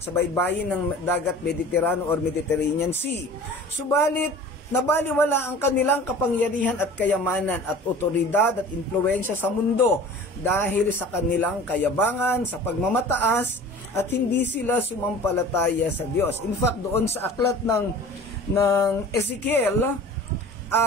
baybayin ng dagat Mediterranean or Mediterranean Sea. Subalit, nabaliwala ang kanilang kapangyarihan at kayamanan at otoridad at impluensya sa mundo dahil sa kanilang kayabangan, sa pagmamataas, at hindi sila sumampalataya sa Diyos. In fact, doon sa aklat ng Ezekiel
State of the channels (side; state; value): both; normal; correlation 0.42